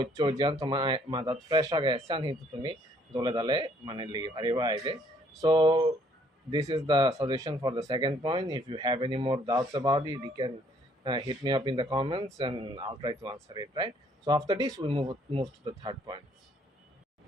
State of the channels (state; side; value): normal; both; correlation 0.64